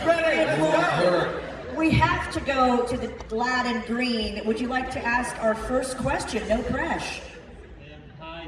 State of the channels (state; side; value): identical; both; correlation 1.00